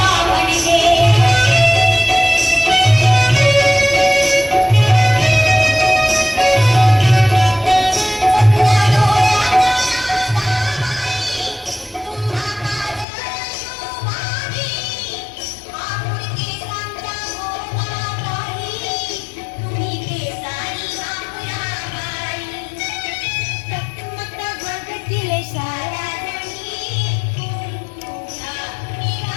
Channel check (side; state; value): right; drops out; at 13.1 s